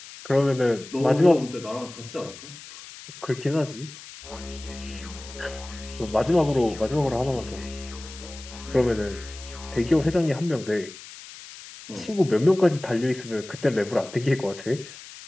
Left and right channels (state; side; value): noise; left; hiss, 16 dB below the sound